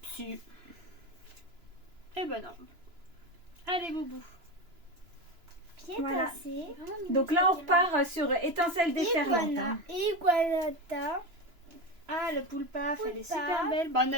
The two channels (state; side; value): late; left; 3.0 ms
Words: Si. Eh ben non. Allez, Boubou. Pied Voilà. cassé. Donc là, on repart sur étincelle déferlante. Iguana. hein. Iguanata. Ah, le Poulpaf, elle est Poulpaf. super belle. Bah, on